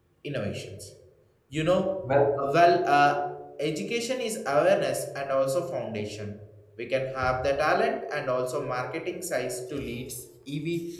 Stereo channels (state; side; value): identical; both; correlation 1.00